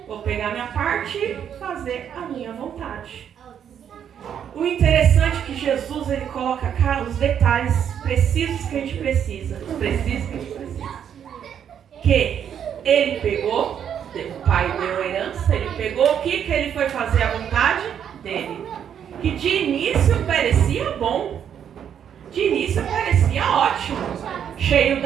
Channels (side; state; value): left; quieter; 8.8 dB